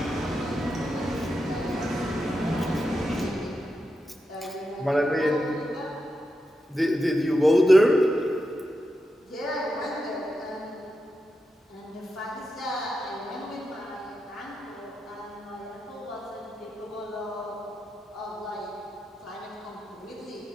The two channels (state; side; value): normal; both; correlation 0.88